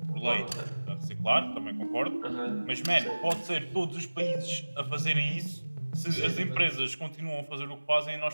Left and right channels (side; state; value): both; inverted; correlation -1.00